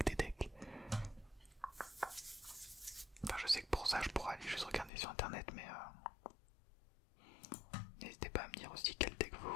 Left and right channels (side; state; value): right; drops out; at 4.9 s